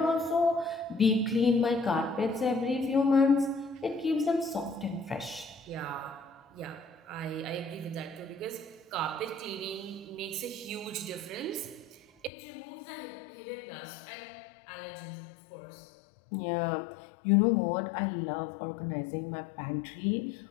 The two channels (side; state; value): right; drops out; at 12.3 s